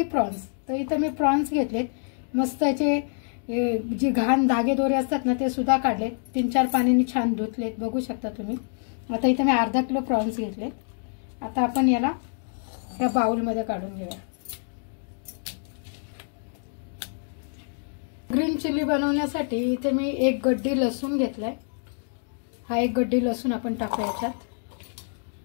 प्रॉन्स। तर इथे मी प्रॉन्स घेतलेत, मस्त याचे जी घाण धागे दोरे असतात ना ते सुद्धा काढलेत, 3-4 पाण्याने छान धुतलेत, बघू शकता तुम्ही। आता इथे मी अर्धा किलो प्रॉन्स घेतलेत। आता आपण याला या बाउल मध्ये काढून घेऊया। ग्रीन चिल्ली बनवण्यासाठी इथे मी 1 गड्डी लसूण घेतलाय। हा 1 गड्डी लसूण आपण टाकूया। याच्यात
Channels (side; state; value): right; silent; 61 dB below the other